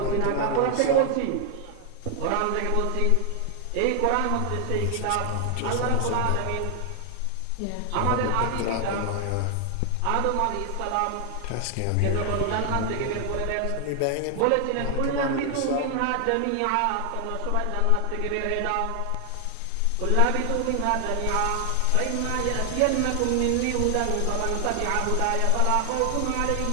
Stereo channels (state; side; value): different; both; correlation 0.00